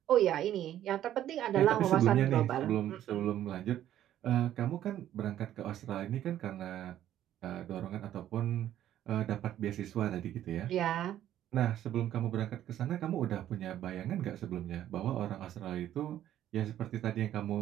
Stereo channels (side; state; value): left; quieter; 11.9 dB